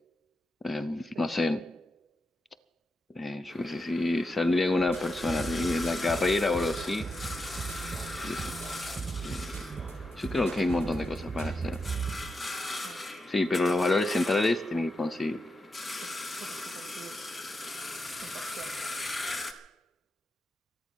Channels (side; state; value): both; normal; correlation 0.86